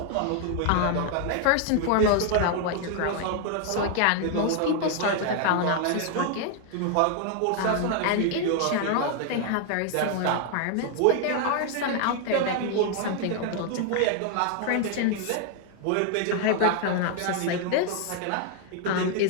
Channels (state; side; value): different; both; correlation 0.00